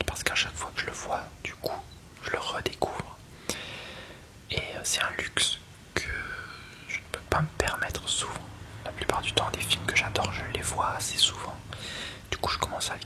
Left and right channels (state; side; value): identical; both; correlation 1.00